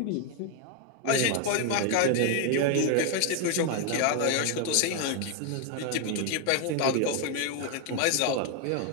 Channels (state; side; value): different; both; correlation 0.01